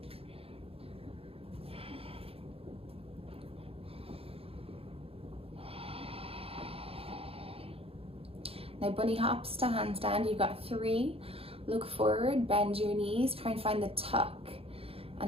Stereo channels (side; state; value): left; late; 0.28 ms